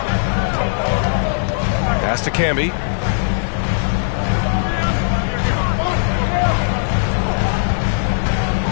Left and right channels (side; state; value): right; silent; digital silence